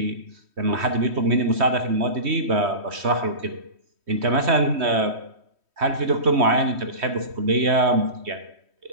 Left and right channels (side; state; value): left; late; 3.1 ms